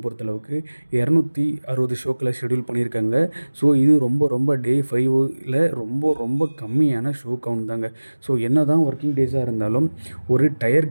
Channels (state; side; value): inverted; both; correlation -1.00